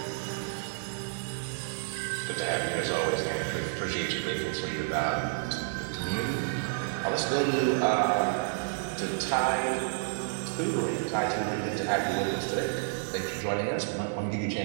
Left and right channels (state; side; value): silent; left; digital silence